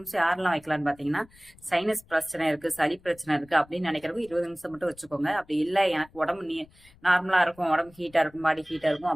யாரெல்லாம் வைக்கலாம்னு பாத்தீங்கன்னா, சைனஸ் பிரச்சனை இருக்கு, சளி பிரச்சனை இருக்கு அப்படின்னு நினைக்கிறவங்க 20 நிமிஷம் மட்டும் வச்சுக்கோங்க. அப்படி இல்ல எனக்கு உடம்பு நார்மலா இருக்கும், உடம்பு ஹீட்டா இருக்கும், பாடி ஹீட்டா இருக்கும்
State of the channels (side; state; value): left; noise; rumble, 27 dB below the sound